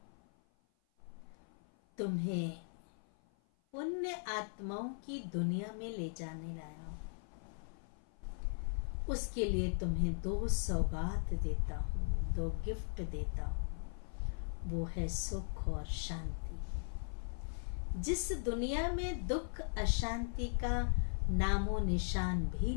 तुम्हें पुण्य आत्माओं की दुनिया में ले जाने लाया हूं। उसके लिए तुम्हें 2 सौगात देता हूं, 2 गिफ्ट देता हूं। वो है सुख और शांति। जिस दुनिया में दुख अशांति का नामो निशान भी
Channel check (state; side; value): silent; right; 52 dB below the other